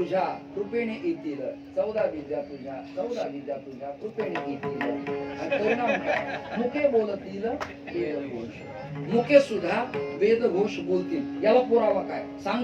कृपेने येतील. 14 विद्या तुझ्या, 14 विद्या तुझ्या कृपेने येतील. आणि परिणाम काय? मुके बोलतील वेदघोष. मुके सुद्धा वेदघोष बोलतील. याला पुरावा काय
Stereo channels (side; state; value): both; identical; correlation 1.00